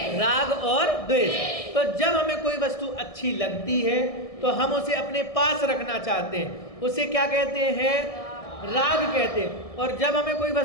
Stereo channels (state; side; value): late; right; 1.6 ms